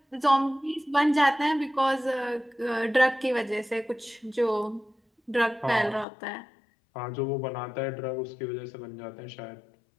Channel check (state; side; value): drops out; right; at 6.1 s